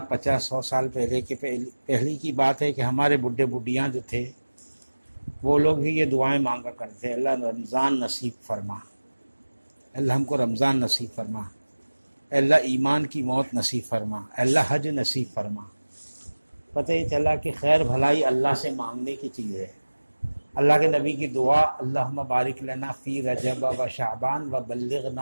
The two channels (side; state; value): both; inverted; correlation -1.00